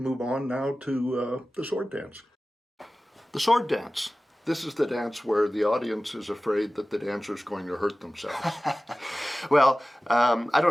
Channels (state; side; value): normal; both; correlation 0.96